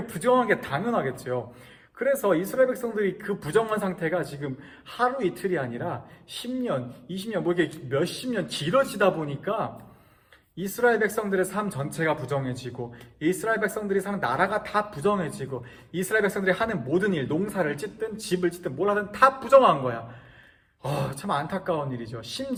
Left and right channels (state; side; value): identical; both; correlation 1.00